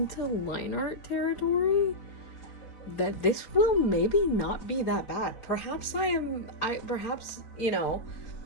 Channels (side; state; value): right; late; 4.3 ms